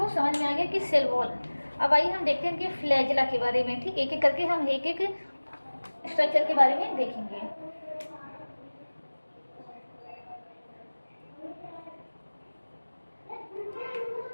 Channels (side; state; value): both; inverted; correlation -1.00